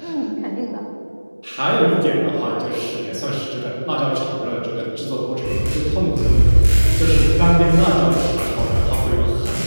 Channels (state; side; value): inverted; both; correlation -1.00